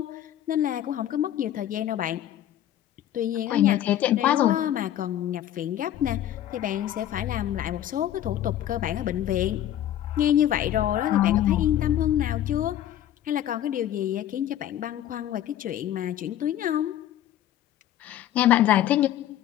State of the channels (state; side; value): quieter; right; 11.9 dB